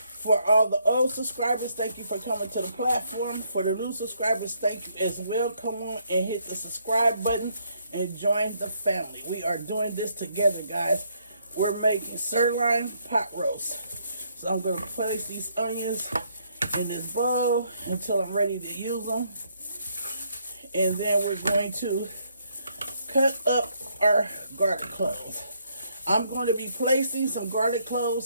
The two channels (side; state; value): both; inverted; correlation -0.71